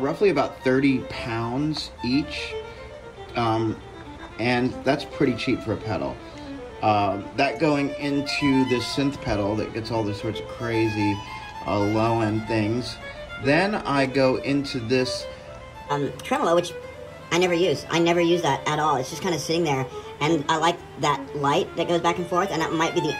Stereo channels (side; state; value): both; identical; correlation 1.00